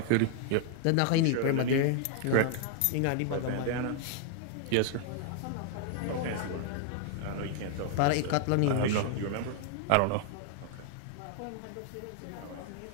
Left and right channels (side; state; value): both; different; correlation 0.00